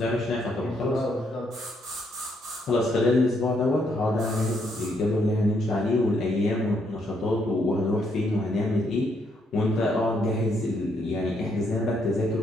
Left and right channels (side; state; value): both; normal; correlation 0.74